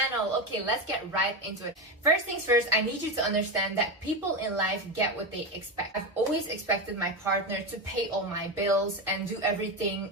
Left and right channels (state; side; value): normal; both; correlation 0.15